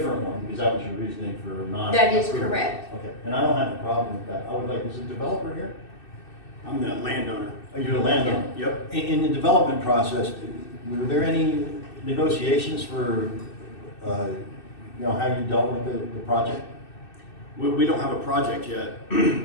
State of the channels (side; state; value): right; late; 2.6 ms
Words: one, because that was your reasoning for not. That is approving. correct. Okay, and I don't have a problem with that. I would like, is the developer here? I'm the landowner. Are you the landowner? Yep. In the development process, were there any negotiations for, how you dealt with the project? We don't have a project yet